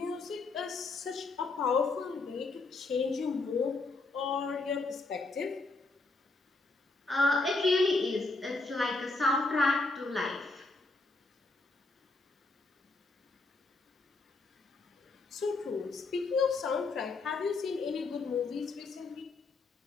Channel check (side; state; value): right; quieter; 3.5 dB